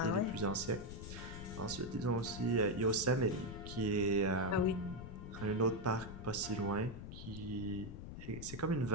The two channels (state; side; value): noise; left; rumble, 10 dB below the sound